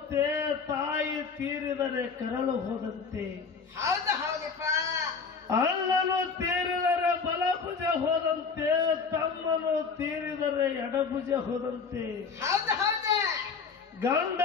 ತಾಯಿ ತೀರಿದರೆ ಕರಳು ಹೋದಂತೆ. ಹೌದು ಹೌದಪ್ಪ. ಅಣ್ಣನು ತೀರಿದರೆ ಬಲಭುಜ ಹೋದಂತೆ, ತಮ್ಮನು ತೀರಿದರೆ ಎಡಭುಜ ಹೋದಂತೆ. ಹೌದು ಹೌದು.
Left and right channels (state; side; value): quieter; right; 5.3 dB